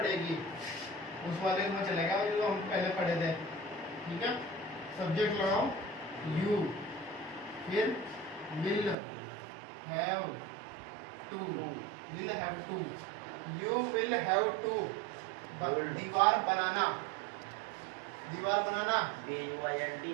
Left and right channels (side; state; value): left; drops out; at 9.0 s